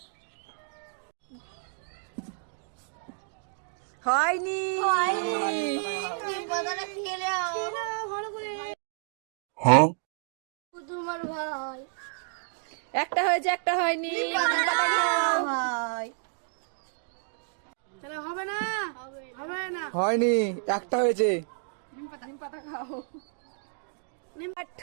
হয়নি। তোমার ভাই একটা হয়েছে, একটা হয়নি। হবে না, হবে না। হয়নি, একটা হয়েছে। নিম পাতা খাও।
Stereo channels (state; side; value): silent; left; digital silence